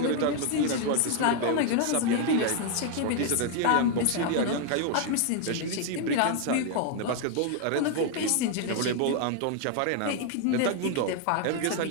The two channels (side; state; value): both; different; correlation 0.00